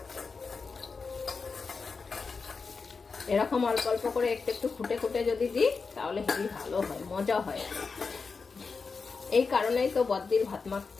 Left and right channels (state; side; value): quieter; right; 4.8 dB